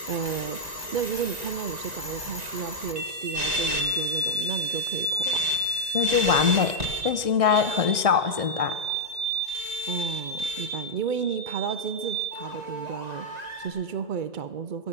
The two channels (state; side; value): late; left; 1.9 ms